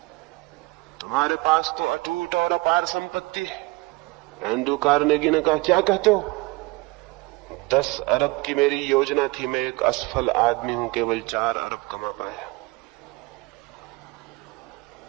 तुम्हारे पास तो अटूट और अपार संपत्ति है। एंड्रू कार्नेगी ने कहा, क्या कहते हो? 10 अरब की मेरी योजना थी, मैं एक असफल आदमी हूं, केवल 4 अरब कमा पाया।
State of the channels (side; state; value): left; quieter; 23.7 dB